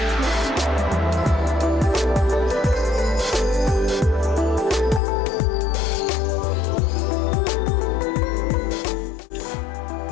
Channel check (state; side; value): drops out; right; at 5.0 s